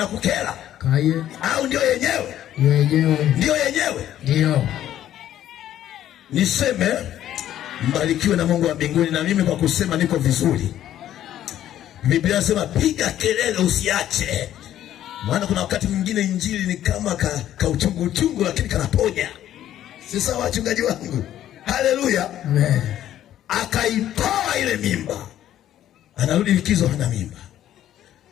Kaye. Au ndio yenyewe? Ndio yenyewe. Ndio. Niseme mbarikiwe na Mungu wa mbinguni, na mimi kwa kusema niko vizuri. Biblia inasema piga kelele usiache. Maana kuna wakati mwingine injili ni kama ka uchungu lakini kanaponya. Si sawa wachungaji wangu? Haleluya. Amen. Akaitoa ile mimba. Anarudi likizo hana mimba.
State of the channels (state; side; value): quieter; right; 11.9 dB